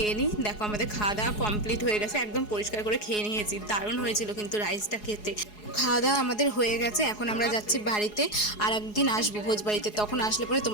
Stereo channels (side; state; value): right; late; 4.8 ms